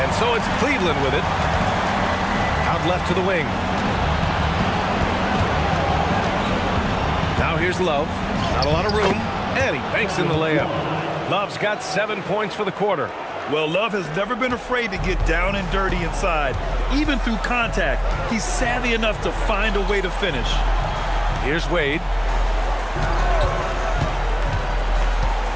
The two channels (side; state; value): both; identical; correlation 1.00